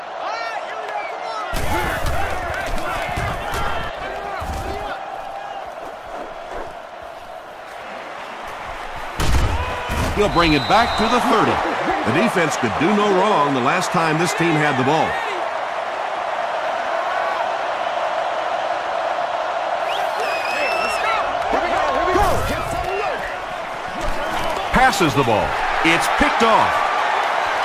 He'll bring it back to the 30. The defense could do no wrong the last time this team had the ball. Passes the ball. It's picked off.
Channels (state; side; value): identical; both; correlation 1.00